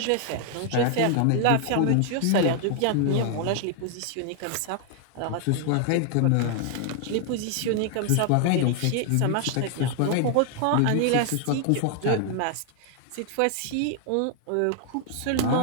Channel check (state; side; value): different; both; correlation 0.00